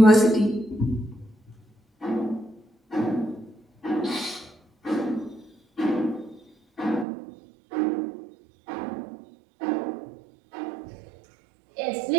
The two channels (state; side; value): drops out; left; at 7.1 s